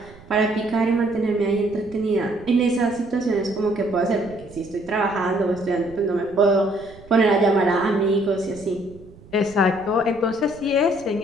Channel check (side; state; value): right; noise; rumble, 22 dB below the sound